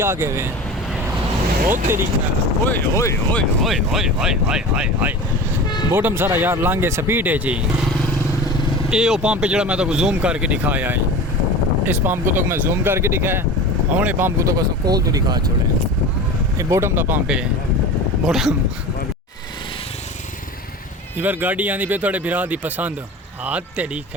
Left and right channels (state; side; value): normal; both; correlation 0.33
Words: आ गए हैं ओ तेरी ओए ओए ओए ओए ओए ओए हाय हाय हाय बॉटम सारा यार लांगे स्पीड है जी। ये वो पंप जो मैं तो जूम करके दिखाया है, इस पंप को तो मैं जूम करके दिखाया हूँ, पंप को तो बस कोल तो दिखा छोड़े। ये बॉटम का पंप है बॉटम। इधर गाड़ी आनी पे थोड़े बिरा दी पसंद हाँ तेरी